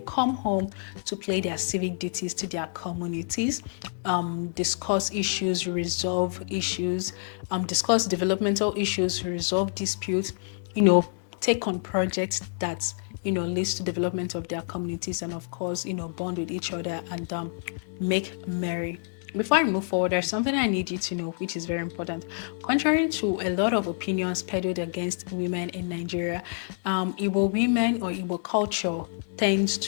come home to play their civic duties to their communities, discuss issues, resolve issues, discuss developmental issues, resolve disputes, take on projects that leads to development of their communities, and of course bond with each other and make merry. Before I move forward, there's something I need you to know, which is very important. Contrary to a lot of opinions peddled against women in Nigeria, Igbo women or Igbo culture tends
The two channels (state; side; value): silent; right; digital silence